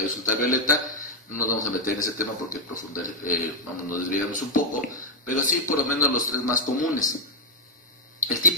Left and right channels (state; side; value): normal; both; correlation 0.01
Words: ultravioleta. No nos vamos a meter en ese tema porque nos desviamos un poco, pero sí por lo menos los 3 más comunes. El